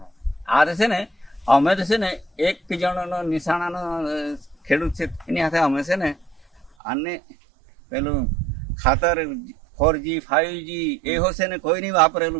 આ છે ને અમે તો છે ને એક જણનો નિશાણાનો ખેડૂત છે એની હાથે અમે છે ને આને પેલું ખાતર 4G 5G એવો છે ને કોઈ નહીં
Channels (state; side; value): drops out; left; at 6.7 s